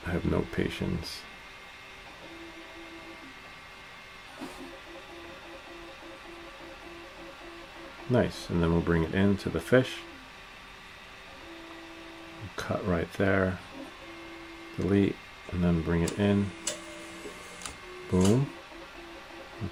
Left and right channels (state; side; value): identical; both; correlation 1.00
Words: have no patience. Nice, and then we'll bring it into the fish. Cut right there. Delete, and then bring it in. Boom.